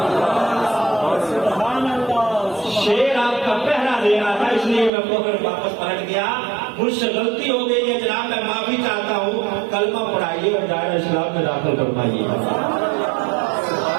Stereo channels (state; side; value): drops out; left; at 4.9 s